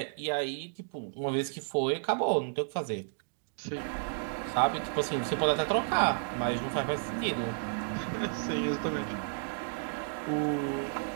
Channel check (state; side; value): silent; left; digital silence